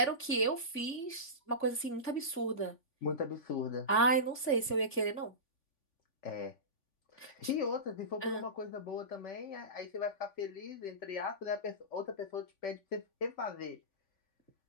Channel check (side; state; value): right; late; 3.5 ms